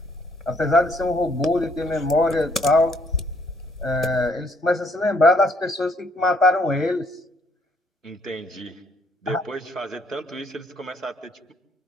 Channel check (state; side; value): normal; both; correlation 0.67